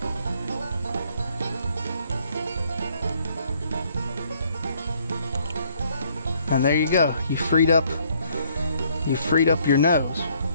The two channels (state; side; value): inverted; both; correlation -0.66